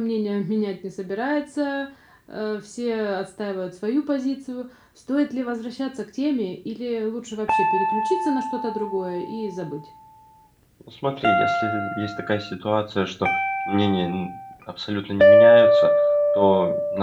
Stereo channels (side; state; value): both; identical; correlation 1.00